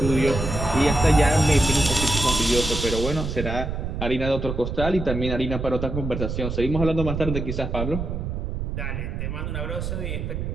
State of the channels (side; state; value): right; noise; rumble, 4 dB below the sound